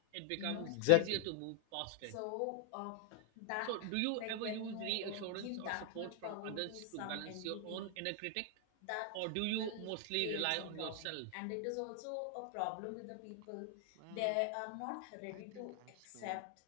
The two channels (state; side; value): different; both; correlation 0.00